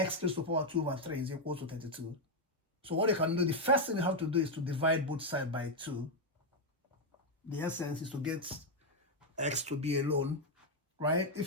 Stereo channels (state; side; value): normal; both; correlation 0.01